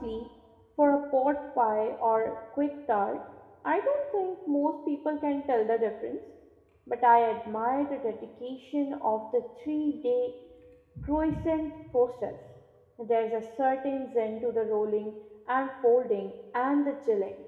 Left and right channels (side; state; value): both; identical; correlation 1.00